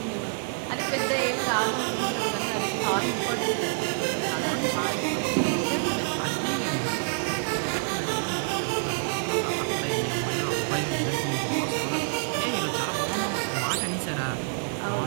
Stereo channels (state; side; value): silent; left; digital silence